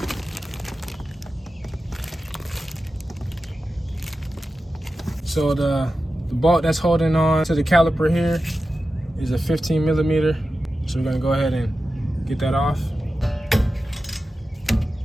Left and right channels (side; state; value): both; normal; correlation 0.93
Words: So the bolt that's holding on to the caliper here is a 15 millimeter. So we're gonna go ahead and get that off.